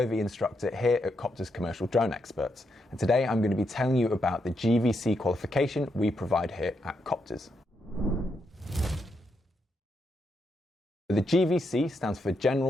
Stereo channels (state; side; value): normal; both; correlation 0.81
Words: instructor here at Coptrz Commercial Drone Experts. And today I'm going to be telling you about the GVC qualification we provide here at Coptrz. The GVC stands for